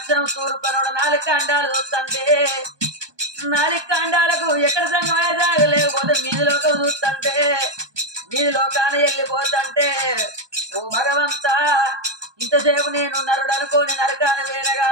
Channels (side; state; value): left; late; 1.2 ms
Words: తూర్పునోడ 4 ఖండాలు చూస్తుంటే 4 ఖండాలకు ఎక్కడ సంగమయ్య సాగలేకపోతే మీదిలోకి చూస్తుంటే మీదిలోకాన వెళ్ళిపోతుంటే ఓ భగవంతా ఇంతసేపు నేను నరుడు అనుకోని నరకాన వేర